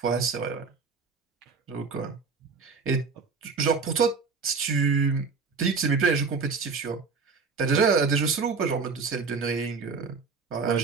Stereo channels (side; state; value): left; quieter; 4.9 dB